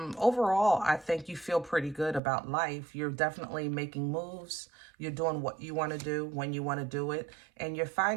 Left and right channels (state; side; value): drops out; left; at 2.2 s